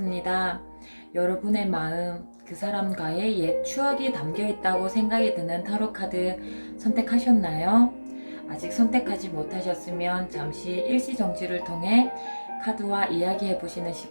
여러분의 마음, 그 사람과의 옛 추억이 담겨 있다고 생각이 드는 타로 카드 선택하셨나요? 아직 선택하지 못하셨으면 잠시 일시정지를 통해 카드와 이야기해 보시는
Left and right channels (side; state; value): both; inverted; correlation -1.00